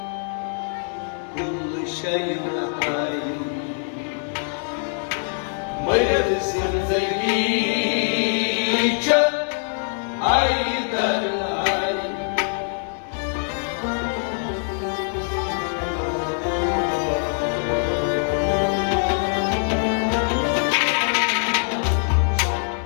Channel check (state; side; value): silent; right; 55 dB below the other